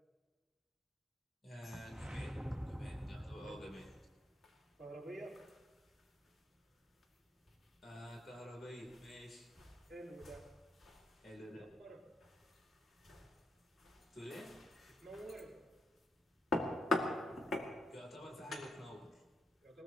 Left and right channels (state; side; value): normal; both; correlation 0.81